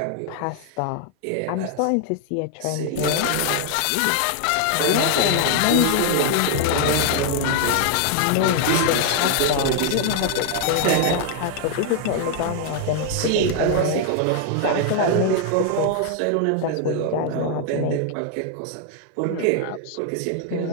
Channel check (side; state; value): both; different; correlation 0.00